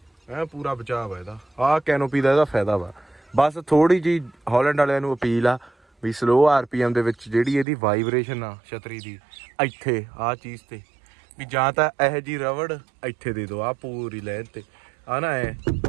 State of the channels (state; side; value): drops out; left; at 7.7 s